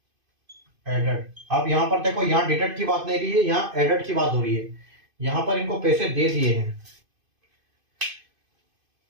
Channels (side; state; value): left; late; 2.5 ms